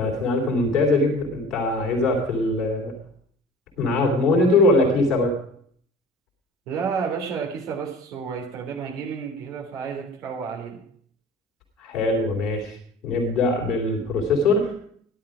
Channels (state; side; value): normal; both; correlation 0.42